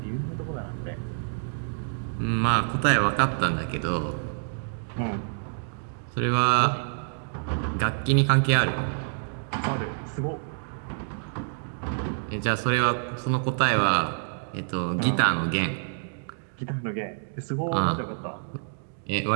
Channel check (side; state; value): left; silent; digital silence